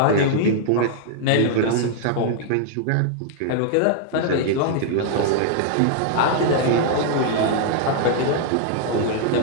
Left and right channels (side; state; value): both; different; correlation -0.01